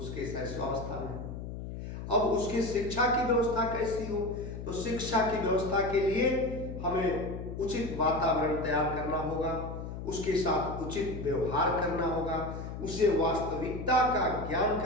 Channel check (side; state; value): left; noise; hum, 8 dB below the sound